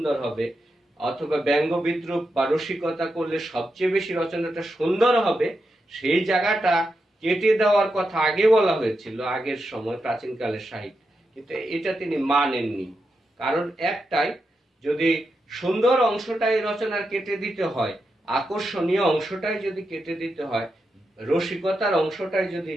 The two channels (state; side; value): normal; both; correlation 0.87